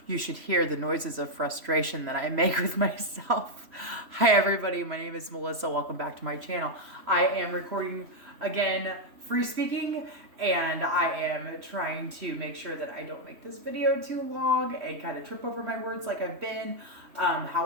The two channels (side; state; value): left; late; 3.1 ms